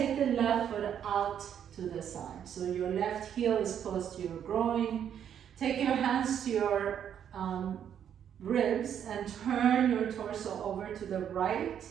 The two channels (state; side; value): quieter; left; 9.1 dB